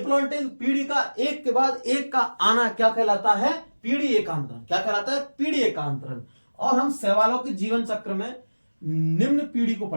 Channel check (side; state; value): both; inverted; correlation -1.00